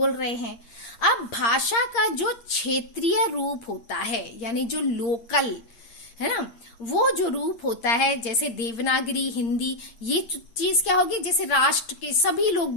रहे हैं। अब भाषा का जो क्षेत्रीय रूप होता है, यानी जो लोकल है ना, वो जो रूप होता है, जैसे देवनागरी, हिंदी, ये चीज क्या होगी, जैसे राष्ट्र के सभी लोग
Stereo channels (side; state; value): right; late; 8.7 ms